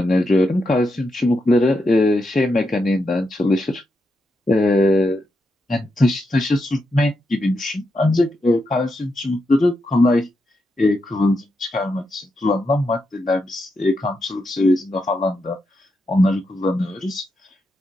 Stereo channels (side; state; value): both; normal; correlation 0.84